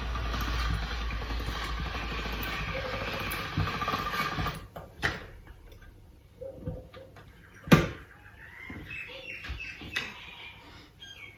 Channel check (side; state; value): both; identical; correlation 1.00